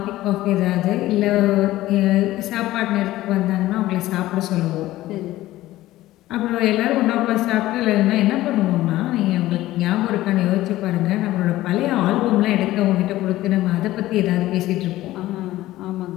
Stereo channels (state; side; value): quieter; right; 15.9 dB